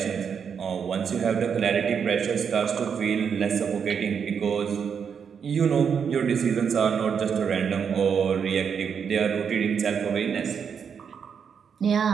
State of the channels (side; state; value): left; quieter; 6.9 dB